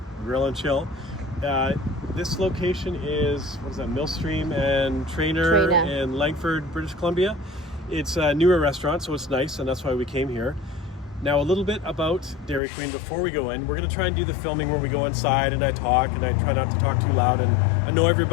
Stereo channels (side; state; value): right; drops out; at 12.6 s